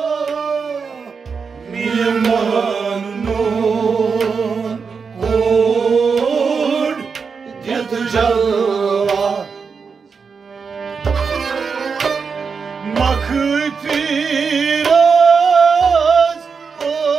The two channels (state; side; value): quieter; left; 5.5 dB